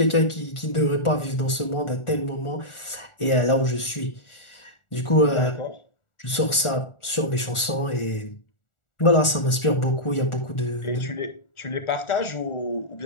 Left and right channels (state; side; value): late; right; 1.4 ms